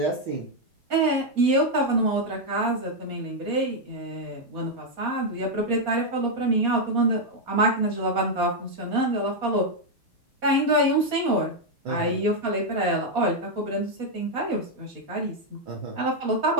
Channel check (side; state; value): left; late; 4.2 ms